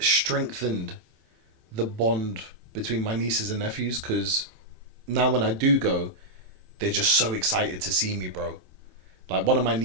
the bond between my nieces and nephews, because now when I do go, they're just so excited to see me, bro. Like, one of my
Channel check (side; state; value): left; late; 27 ms